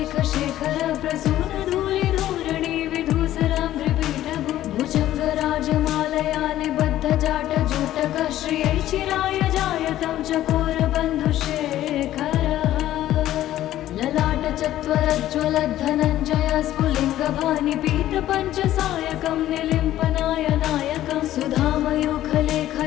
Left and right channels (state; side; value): quieter; right; 13.4 dB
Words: शेखर प्रसून धूलि धूरणि विधूसराम्भ्रिपीठभु भुजङ्ग राजमालया निबद्ध जाट जोटक श्रियै चिराय जायतं चकोर बन्धुशेखरः ललाट चत्वरज्ज्वलद्धनञ्जय स्फुलिङ्गभानि पीत पञ्चसायकं निलिम्पनाय नायकं